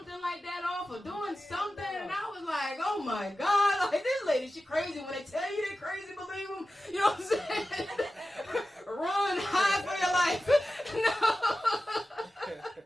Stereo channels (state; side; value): normal; both; correlation 0.94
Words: like that off or doing something, and I was like, oh my god, this lady, she crazy. When they tell you they're crazy, believe them. You know what I'm saying? Run, hide for your life.